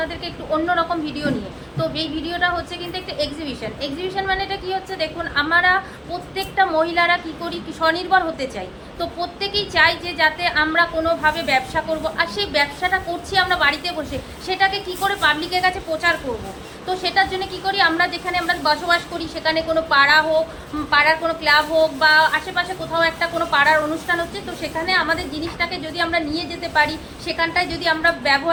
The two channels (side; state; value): both; identical; correlation 1.00